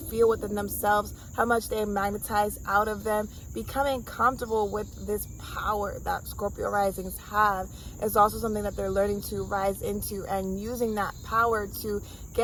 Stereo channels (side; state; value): both; identical; correlation 1.00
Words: feel within themselves, how much they magnetize out of them. Becoming comfortable with this power that Scorpio risings have is also something that they're learning to rise into, and using that power to